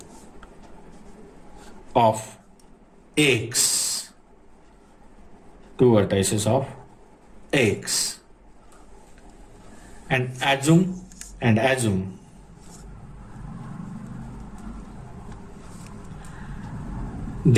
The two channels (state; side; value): identical; both; correlation 1.00